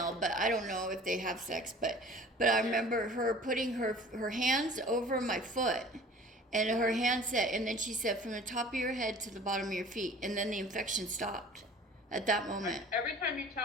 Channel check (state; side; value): normal; both; correlation 0.45